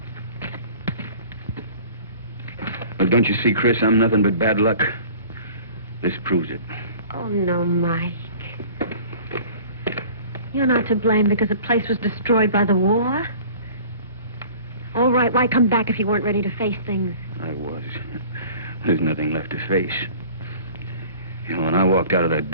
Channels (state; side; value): inverted; both; correlation -0.46